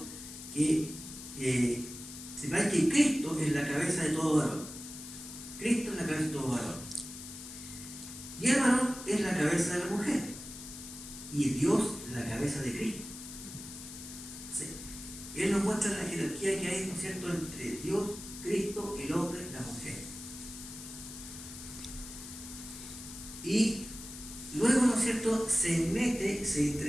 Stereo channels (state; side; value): noise; left; hiss, 12 dB below the sound